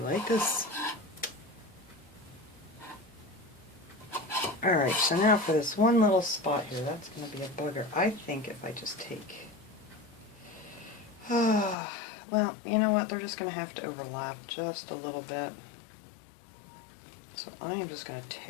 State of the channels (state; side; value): drops out; right; at 11.8 s